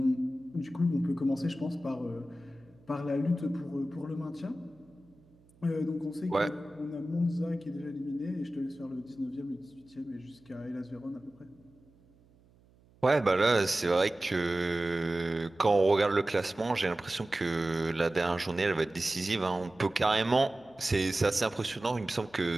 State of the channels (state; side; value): noise; right; hum, 30 dB below the sound